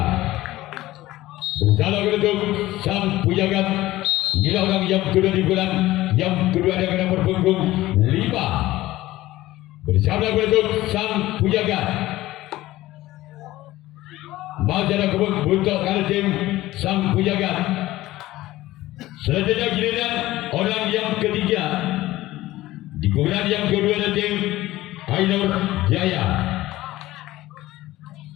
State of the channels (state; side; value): quieter; right; 16.7 dB